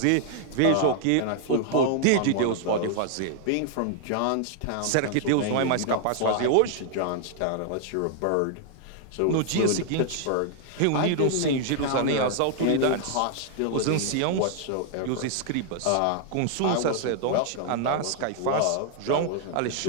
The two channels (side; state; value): both; different; correlation 0.00